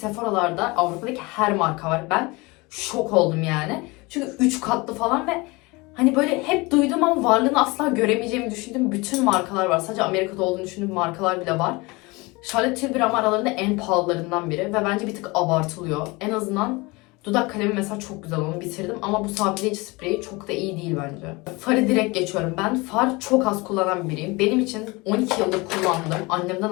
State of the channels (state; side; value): quieter; right; 24.6 dB